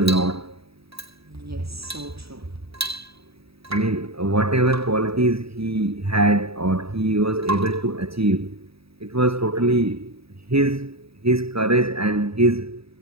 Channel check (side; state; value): left; late; 0.77 ms